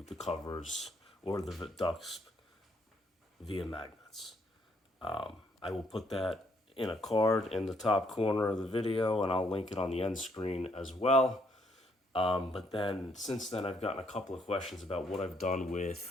the covers or the ducts via magnets. I will put that in a card in the top corner of the video, and I'll link it on the end screen as well. But then since then, I've gotten a couple of questions about what I've done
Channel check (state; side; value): normal; both; correlation 0.71